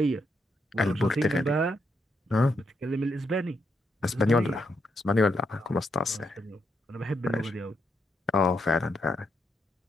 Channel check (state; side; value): normal; both; correlation 0.79